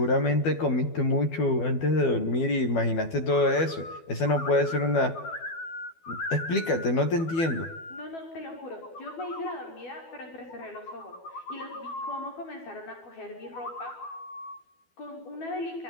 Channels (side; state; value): right; late; 12 ms